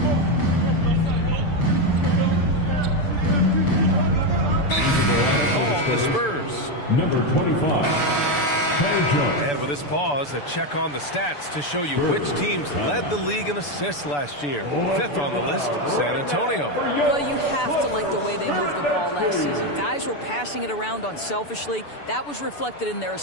the Spurs. Number 25, And with this pause, a check on the stats to show you which teams led the league in assists last year. 5th on the list, San Antonio. Well, you have to like the way they moved the ball last season. Guys were passing it around unselfishly. That was reflected in their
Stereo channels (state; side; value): late; right; 6.9 ms